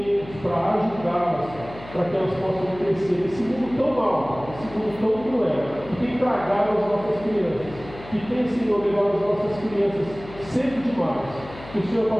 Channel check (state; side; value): noise; left; hum, 16 dB below the sound